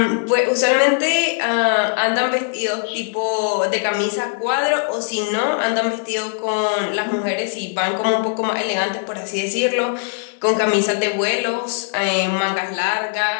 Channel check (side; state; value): right; silent; digital silence